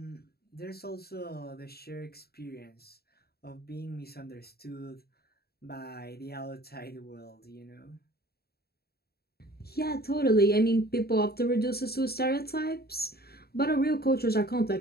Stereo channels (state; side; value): late; right; 0.46 ms